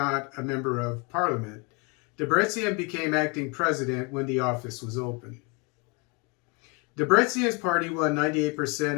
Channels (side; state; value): right; quieter; 31.2 dB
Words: a member of parliament, Debretsion became acting president when the office was open. Debretsion's party won